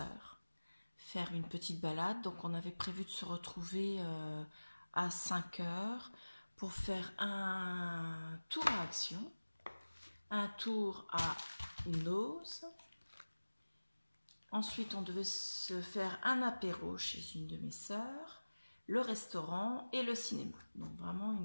faire une petite balade. Donc on avait prévu de se retrouver à 5 heures pour faire un tour à Action, un tour à Noz. Ensuite, on devait se faire un apéro chez une de mes sœurs, le restaurant et le cinéma. Donc vraiment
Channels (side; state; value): both; inverted; correlation -1.00